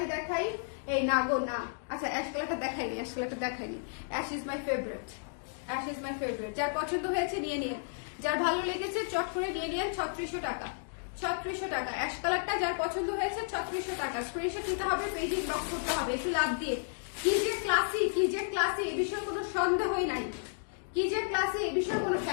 দেখাই। এই না গো না, আচ্ছা অ্যাশ কালারটা দেখাইনি, অ্যাশ ইজ মাই ফেভারিট। যার পছন্দ হয়েছে নিয়ে নিন, যার ভালো লেগেছে চট করে নিয়ে নিন। 3600 টাকা, 3600 টাকা। অ্যাশ কালারটা যার পছন্দ হয়েছে 3600 টাকা। স্ক্রিনশট নিতে হবে, পেজ ইনবক্স করতে হবে একটু লাভ দিয়ে। কি যে ক্লাসি, এ বিষয়ে কোনো সন্দেহই নাই। কি যে ক্লাসি, এ বিষয়ে কোনো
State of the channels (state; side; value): silent; right; digital silence